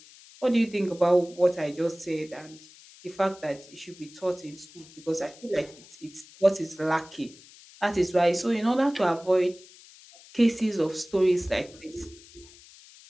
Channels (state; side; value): noise; left; hiss, 22 dB below the sound